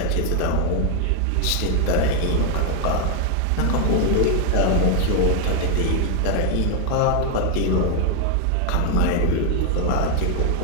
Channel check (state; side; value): different; both; correlation 0.00